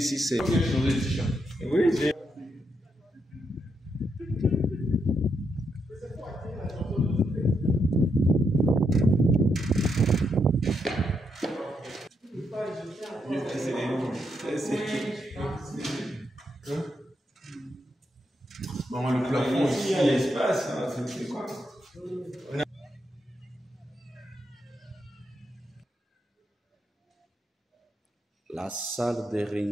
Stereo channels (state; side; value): normal; both; correlation 0.80